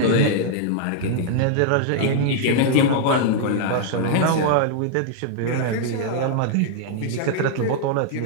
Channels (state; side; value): different; both; correlation -0.01